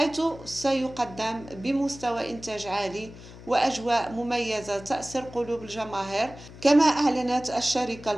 سيقدم بمستوى إنتاج عالي وأجواء مميزة تأسر قلوب الجماهير. كما أعلنت الشركة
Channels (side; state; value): left; noise; hum, 17 dB below the sound